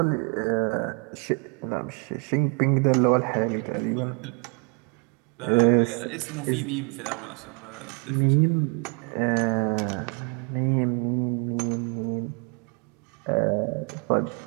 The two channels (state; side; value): quieter; left; 35.9 dB